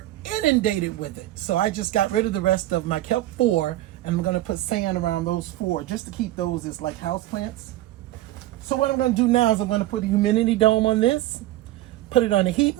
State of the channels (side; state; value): left; quieter; 15.4 dB